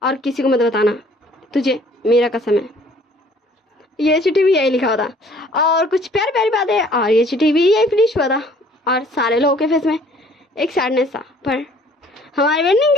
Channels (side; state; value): both; normal; correlation 0.56